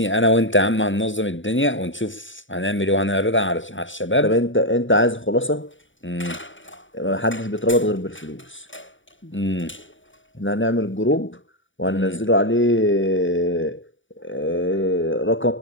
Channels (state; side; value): late; right; 0.56 ms